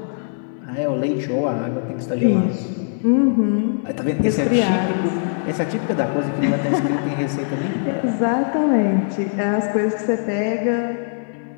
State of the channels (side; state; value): right; silent; digital silence